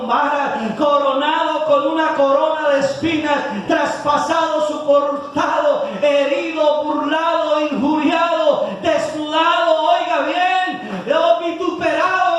varas, coronado con una corona de espinas, traspasado su costado, herido, burlado, injuriado, desnudado, oiga bien,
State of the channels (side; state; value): both; identical; correlation 1.00